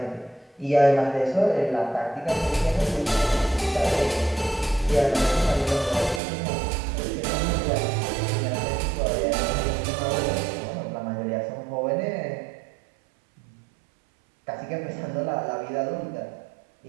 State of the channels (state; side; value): drops out; left; at 6.2 s